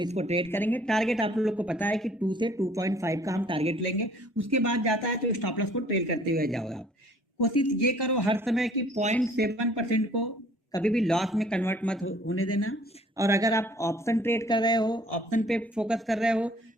ट्रेड करेंगे। टारगेट आप लोग को पता है कि 2 से 2.5 का हम टारगेट लेंगे, उसके बाद जाता है तो स्टॉप लॉस को ट्रेड करते हुए जाओ आप। कोशिश ये करो हर समय कि 0.7% को कभी भी लॉस में कन्वर्ट मत होने देना। और अगर आप ऑप्शन ट्रेड कर रहे हो, ऑप्शन पे फोकस कर रहे हो,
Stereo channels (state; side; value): normal; both; correlation 0.56